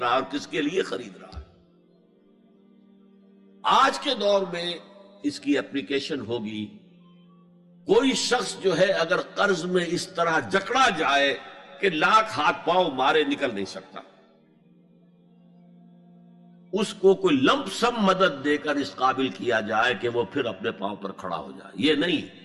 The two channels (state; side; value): identical; both; correlation 1.00